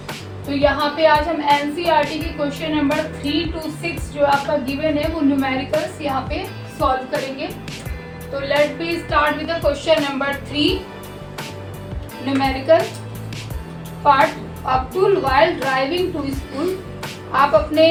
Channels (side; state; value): both; identical; correlation 1.00